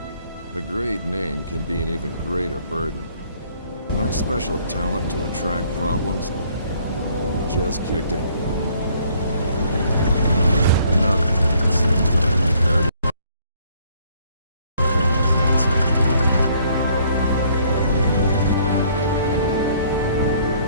A great name can be an even greater burden. My special talent to attract problems just kicked in. Another thing that seems that I'm prepared to famous answer.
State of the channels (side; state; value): both; inverted; correlation -0.63